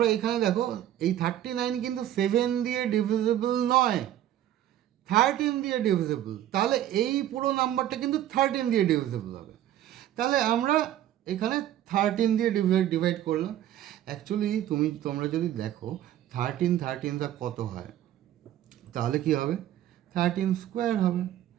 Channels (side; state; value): left; quieter; 12.2 dB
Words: এখানে দেখো, এই 39 কিন্তু 7 দিয়ে ডিভিজিবল নয়, 13 দিয়ে ডিভিজিবল। তাহলে এই পুরো নাম্বারটা কিন্তু 13 দিয়ে ডিভিজিবল হবে। তাহলে আমরা এখানে 13 দিয়ে ডিভাইড করলাম। অ্যাকচুয়ালি তোমরা যদি দেখো 13 কত হয়, তাহলে কি হবে? 13 স্কোয়ার হবে।